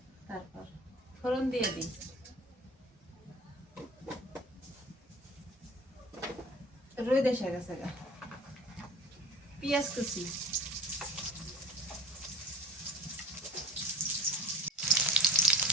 তারপর ফোড়ন দিয়ে দিই রই দেশে গেছে গা পেঁয়াজ কুচি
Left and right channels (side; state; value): both; normal; correlation 0.41